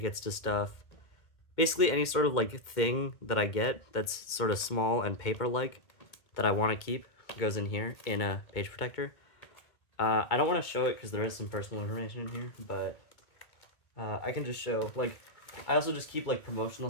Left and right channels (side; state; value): right; late; 2.1 ms